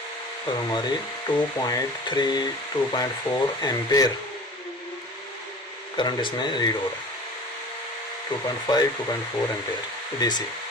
और हमारी 2.3 2.4 एम्पेयर करंट इसमें रीड हो रहा है, 2.5 2.4 एम्पेयर डीसी।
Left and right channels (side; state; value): both; normal; correlation 0.41